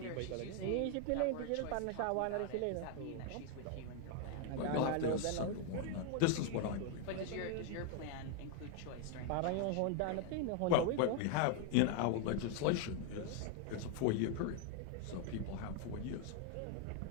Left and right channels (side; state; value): both; different; correlation 0.00